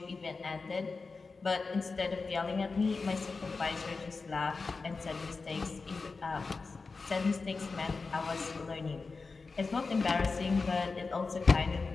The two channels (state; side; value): quieter; right; 4.2 dB